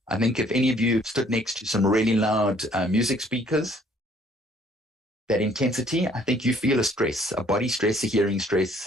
I think if any of you have stood next to some really loud music speakers, that intensity, I think you feel a stress, a body stress, a hearing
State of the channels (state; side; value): normal; both; correlation 0.60